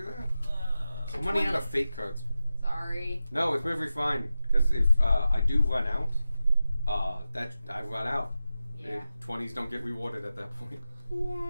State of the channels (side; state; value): both; inverted; correlation -0.92